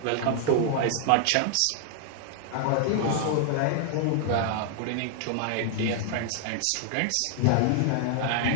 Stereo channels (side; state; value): both; different; correlation 0.00